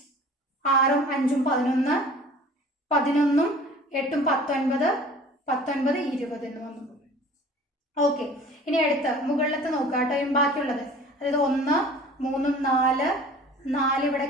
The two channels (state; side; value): normal; both; correlation 0.45